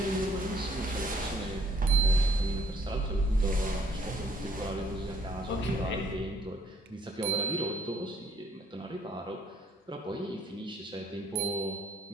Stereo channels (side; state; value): both; normal; correlation 0.63